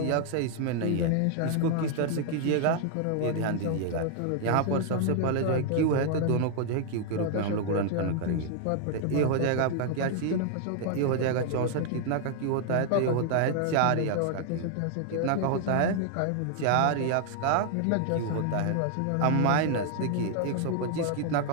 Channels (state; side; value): different; both; correlation 0.00